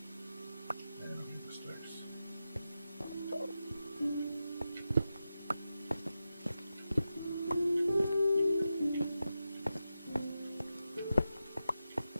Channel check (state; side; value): inverted; both; correlation -0.91